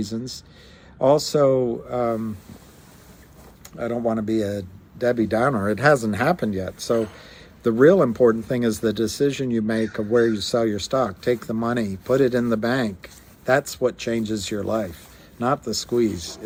Also, I don't want to be a Debbie Downer. It hasn't happened yet. So the real important thing is the decision you make of where you sell your stock. Take the money, put it in the bank. That's what changes your life, not the squeeze.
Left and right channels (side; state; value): both; identical; correlation 1.00